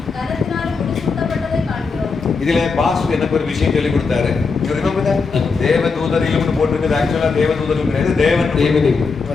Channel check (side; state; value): right; quieter; 4.7 dB